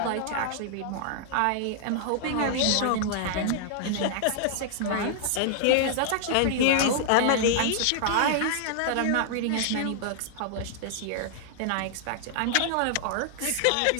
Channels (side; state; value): both; different; correlation -0.01